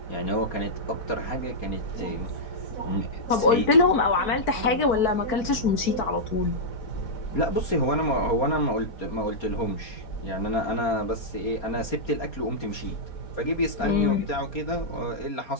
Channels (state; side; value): late; right; 4.5 ms